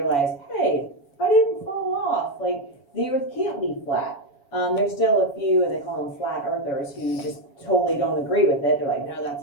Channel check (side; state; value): right; late; 7.1 ms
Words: hey, I didn't fall off. Like, the Earth can't be flat. There's still a few, and they call them flat earthers, who just totally don't agree with it. They're like, no,